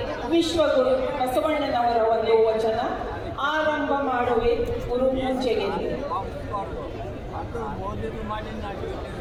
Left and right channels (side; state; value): both; identical; correlation 1.00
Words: ವಿಶ್ವಗುರು ಬಸವಣ್ಣನವರ ಒಂದು ವಚನ ಆರಂಭ ಮಾಡುವೆ ಗುರು ಪೂಜೆಗೆ.